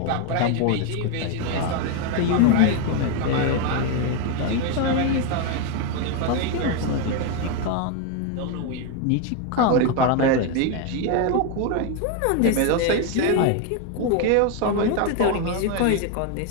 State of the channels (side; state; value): both; different; correlation 0.01